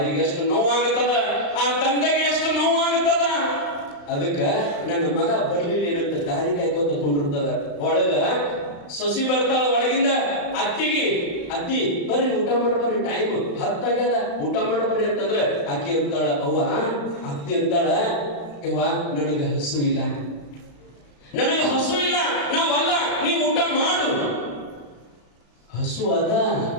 ಎಷ್ಟು ನೋವಾಗುತ್ತದ, ಆ ತಂದೆಗೆ ಎಷ್ಟು ನೋವಾಗುತ್ತದ. ಅದಕ್ಕ ನನ್ನ ಮಗ ಬರ್ಲಿಲ್ಲ ಏನಂತ ದಾರಿ ಕಾಯ್ಕೋತ ಕೊಂಡಿರ್ತದ. ಒಳಗ ಸೊಸಿ ಬರ್ತಾಳ, ಒಳಗಿಂದ ಅತ್ತಿ ಬರ್ರಿ ಊಟ ಮಾಡ್ಬರ್ರಿ, ಟೈಮ್ 10 ಆಗ್ಯದ, ಊಟ ಮಾಡ್ಬರ್ರಿ ಅಂತಂದ್ರೆ ಅಕ್ಕಿ ಅಂತಾಳ, ಅತ್ತಿ ಅಂತಾಳ, ಯವ್ವ ನನಗೆ ಹಸು ಇಲ್ಲ, ನಾವಲ್ಲ, ನೀವು ಊಟ ಮಾಡು. ಹಸು ಅದ,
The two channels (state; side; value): late; right; 35 ms